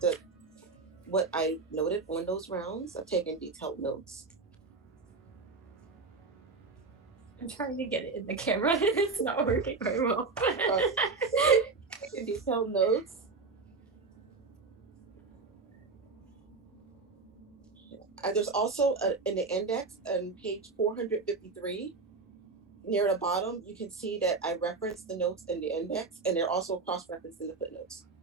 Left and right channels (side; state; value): left; quieter; 4.2 dB